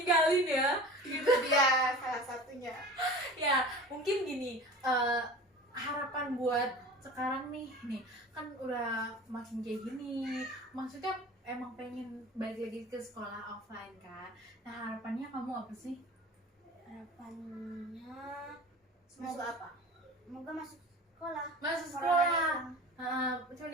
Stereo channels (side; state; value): both; normal; correlation 0.38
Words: ya gitu. Itu dia salah satunya. Ya mungkin gini, harapan buat sekarang nih kan udah makin kayak gini, maksudnya emang pengen balik lagi ke sekolah offline kan. Nah harapannya kamu apa sih? Harapannya Semoga apa? semoga masuk sekolah. Masuk Corona sekolah. Cuman